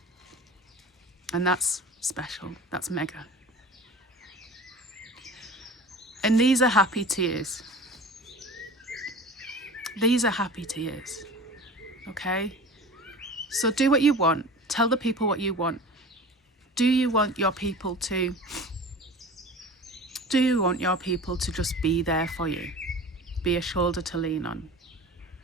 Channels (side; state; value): both; normal; correlation 0.37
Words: And that's special. That's mega. And these are happy tears. These are happy tears. Okay? So do what you want. Tell the people what you want. Do you want your people to just be there for you? Be a shoulder to lean on?